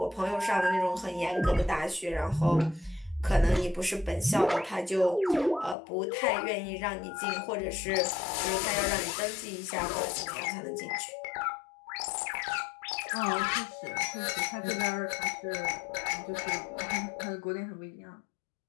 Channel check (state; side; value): drops out; right; at 5.8 s